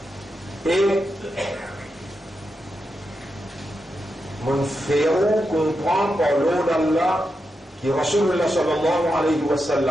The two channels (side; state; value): both; normal; correlation 0.87